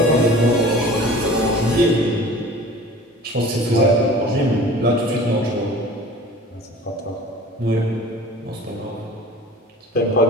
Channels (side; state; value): both; normal; correlation 0.43